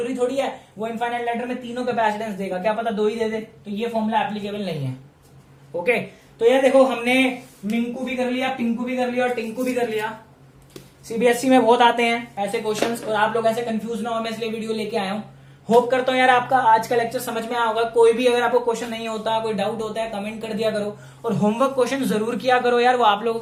थोड़ी है वो इनफाइनाइट लेटर में तीनों कैपेसिटेंस देगा, क्या पता 2 ही दे दे, तो ये फॉर्मूला एप्लीकेबल नहीं है, ओके। तो ये देखो हमने मिंकू भी कर लिया, पिंकू भी कर लिया और टिंकू भी कर लिया। सीबीएसई में बहुत आते हैं ऐसे क्वेश्चंस और आप लोग ऐसे कंफ्यूज ना हो, मैं इसलिए वीडियो लेके आया हूँ। होप करता हूँ यार आपका आज का लेक्चर समझ में आया होगा। कोई भी अगर आपको क्वेश्चन नहीं होता, कोई डाउट होता है, कमेंट कर दिया करो और होमवर्क क्वेश्चन जरूर किया करो यार, वो आप लोगों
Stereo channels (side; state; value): both; identical; correlation 1.00